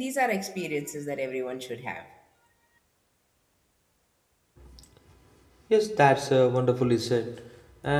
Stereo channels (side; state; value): both; identical; correlation 1.00